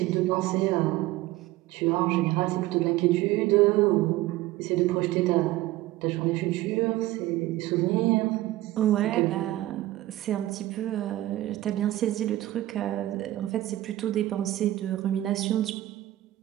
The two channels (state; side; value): quieter; left; 16.2 dB